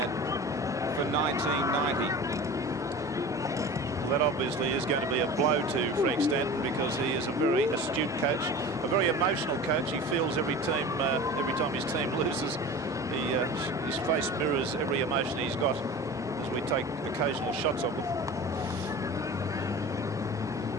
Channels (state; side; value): normal; both; correlation 0.36